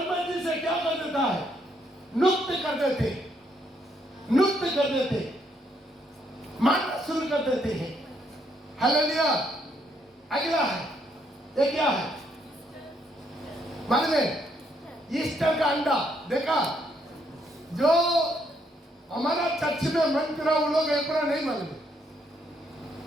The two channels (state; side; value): normal; both; correlation 0.73